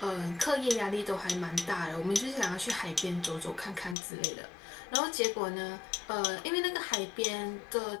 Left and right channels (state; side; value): drops out; right; at 4.0 s